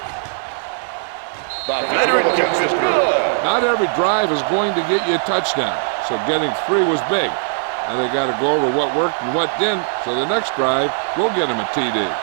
The veteran kicks it through. Not every drive is going to get you a touchdown, so getting 3 was big. Now they got to go over what worked and what didn't, so the next drive will get him a TD.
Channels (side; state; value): left; silent; 62 dB below the other